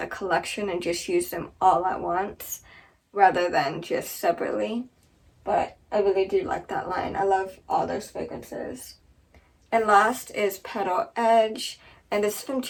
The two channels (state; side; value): identical; both; correlation 1.00